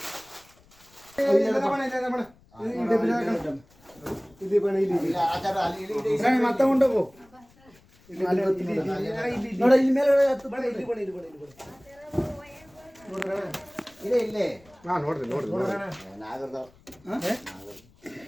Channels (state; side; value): noise; left; rumble, 29 dB below the sound